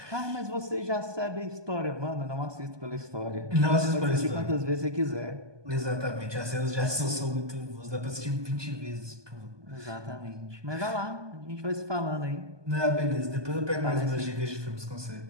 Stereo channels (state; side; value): late; left; 1.2 ms